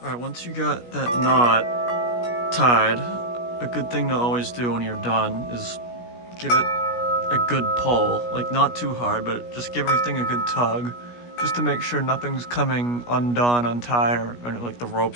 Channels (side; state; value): right; late; 17 ms